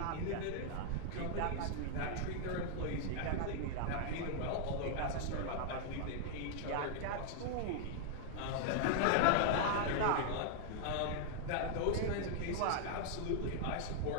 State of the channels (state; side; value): different; both; correlation 0.00